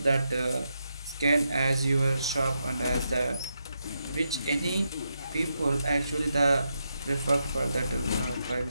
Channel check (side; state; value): both; inverted; correlation -0.84